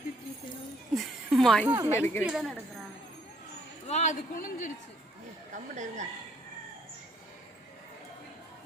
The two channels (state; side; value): normal; both; correlation 0.66